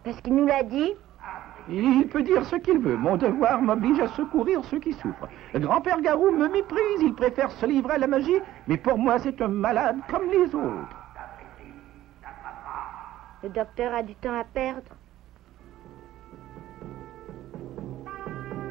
Parce qu'il nous l'a dit. Il peut dire ce qu'il veut. Mon devoir m'oblige à secourir ceux qui souffrent. Le grand-père Garou me méprise. Il préfère se livrer à la magie. Mais pour moi, c'est un malade comme les autres. Le docteur a du temps à perdre.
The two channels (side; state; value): left; quieter; 14.2 dB